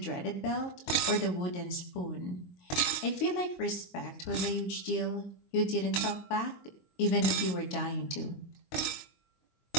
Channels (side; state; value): right; late; 22 ms